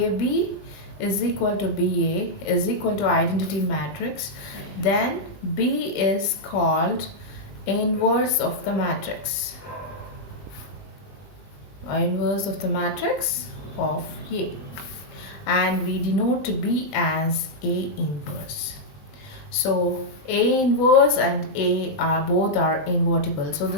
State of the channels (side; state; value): right; late; 20 ms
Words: is equal to BA is equal to identity matrix, then B is called inverse of the matrix, or inverse of the matrix of A, and we denote B as A inverse. So A inverse and A are both invertible. So